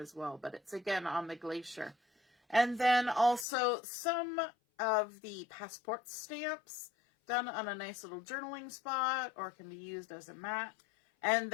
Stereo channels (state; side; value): drops out; right; at 3.5 s